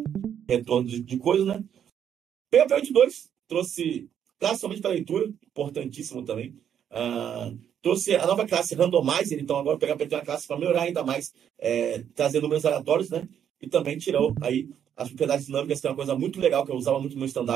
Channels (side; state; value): left; quieter; 9.0 dB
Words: retorno de coisas, né? PHP 8.2 trouxe classe somente para leitura, importantíssimo também. Trouxe a nova classe Randomizer, então agora o PHP tem uma classe para melhorar ainda mais, trazer números aleatórios, né? E também tirou aí as propriedades dinâmicas, que é uma coisa muito legal que eu usava muito no